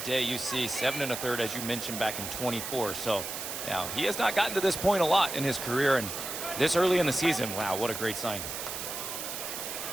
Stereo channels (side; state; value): right; noise; hiss, 6 dB below the sound